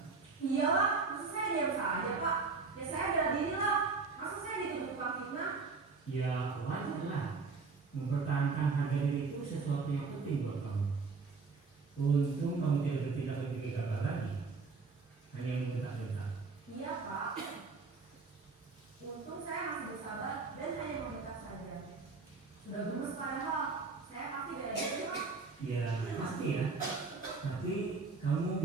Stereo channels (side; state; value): left; quieter; 4.3 dB